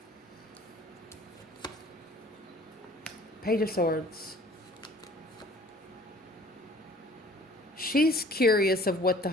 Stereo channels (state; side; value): normal; both; correlation 0.52